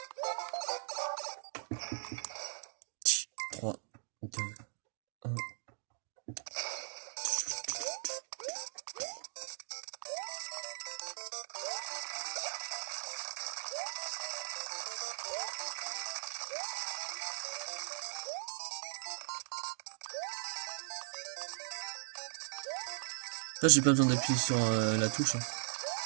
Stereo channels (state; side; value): silent; left; digital silence